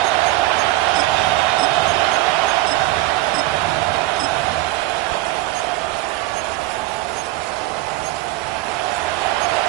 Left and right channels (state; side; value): quieter; left; 17.5 dB